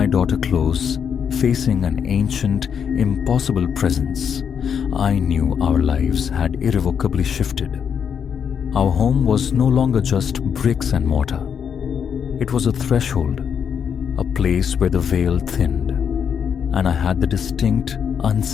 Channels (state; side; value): quieter; right; 7.5 dB